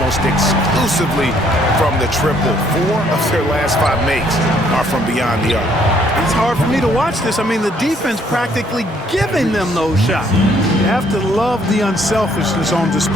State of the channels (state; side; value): normal; both; correlation 0.66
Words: exclusively from the triple. 4 of their last 5 makes are from beyond the arc. It's hard for me to watch this. I mean, the defense practically giving them those shots. You have to love the unselfishness on